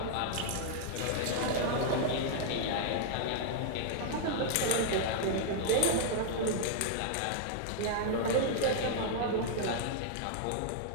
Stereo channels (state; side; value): different; both; correlation -0.01